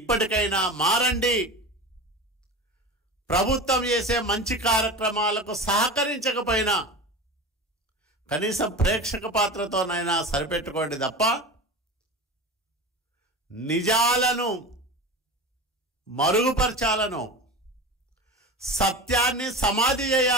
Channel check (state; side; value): normal; both; correlation 0.29